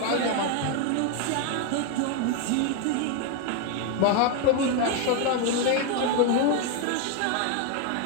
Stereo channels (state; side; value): different; both; correlation 0.01